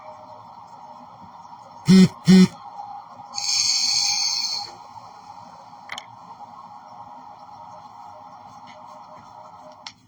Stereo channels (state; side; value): identical; both; correlation 1.00